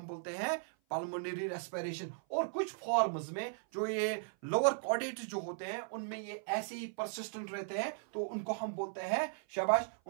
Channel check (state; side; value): silent; left; 53 dB below the other